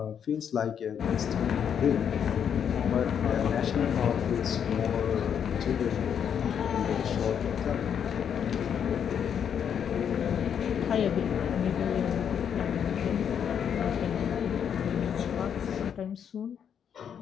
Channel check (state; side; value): quieter; right; 8.2 dB